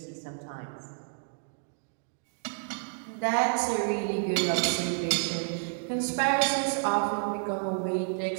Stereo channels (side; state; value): left; silent; digital silence